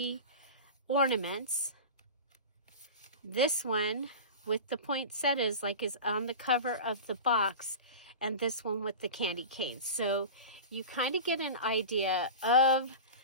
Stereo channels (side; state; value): both; inverted; correlation -0.30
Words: ornaments. This one with the poinsettias, like is on the cover of the box, and this one with the candy canes. So you kind of get an idea of